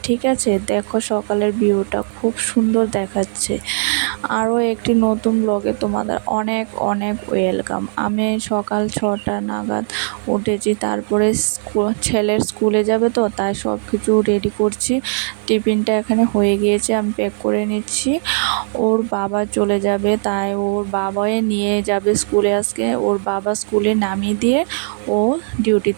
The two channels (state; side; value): silent; left; 66 dB below the other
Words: ঠিক আছে? দেখো সকালের ভিউটা খুব সুন্দর দেখাচ্ছে। আরও একটি নতুন ব্লগে তোমাদের অনেক অনেক ওয়েলকাম। আমি সকাল 6টা নাগাদ উঠেছি, তারপরে ছেলের স্কুলে যাবে তো তাই সব কিছু রেডি করছি। টিফিনটা এখানে হয়ে গিয়েছে, আমি প্যাক করে নিচ্ছি। ওর বাবা চলে যাবে তাই ওর বাবাই নিয়ে যাবে স্কুলে। আজকে ওর বাবা স্কুলে নামিয়ে দিয়ে ও